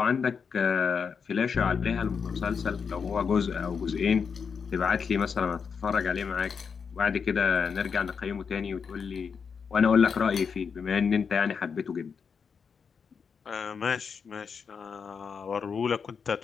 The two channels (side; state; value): right; quieter; 6.1 dB